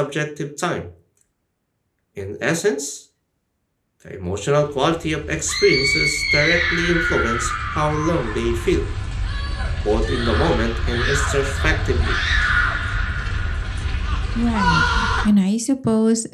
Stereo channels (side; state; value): both; identical; correlation 1.00